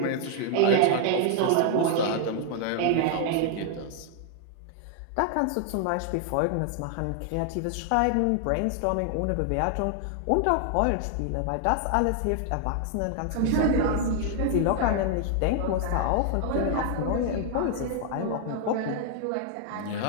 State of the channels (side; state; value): both; different; correlation 0.00